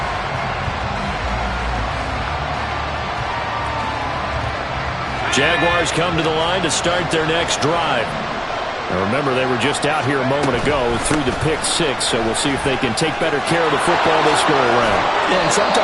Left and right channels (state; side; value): identical; both; correlation 1.00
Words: Jaguars come to the line to start their next drive. Now remember, they were just out here a moment ago through the pick six, so we'll see if they can take better care of the football this go around. Yeah, and